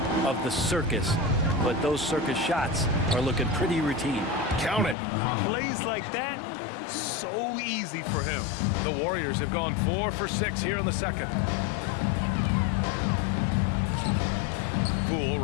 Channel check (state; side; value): drops out; right; at 5.0 s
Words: of the circus, but those circus shots are looking pretty routine. Count it. Plays like that, so easy for him. The Warriors have gone 4 for 6 here in the second. Poole,